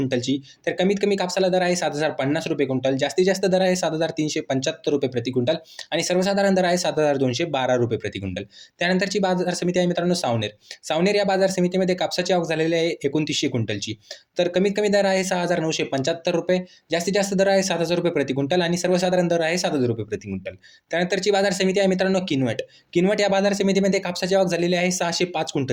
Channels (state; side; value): identical; both; correlation 1.00